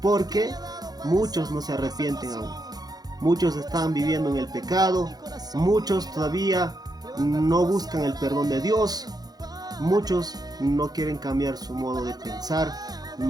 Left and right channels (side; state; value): left; late; 0.19 ms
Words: porque muchos no se arrepienten aún. Muchos están viviendo en el pecado, muchos todavía no buscan el perdón de Dios, muchos no quieren cambiar su modo de pensar,